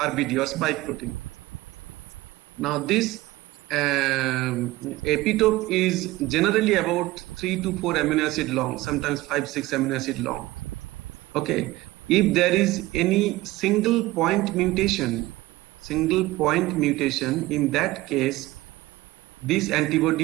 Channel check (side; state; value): left; quieter; 18.5 dB